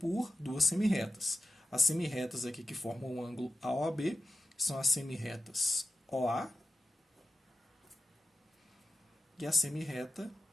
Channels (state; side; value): normal; both; correlation 0.94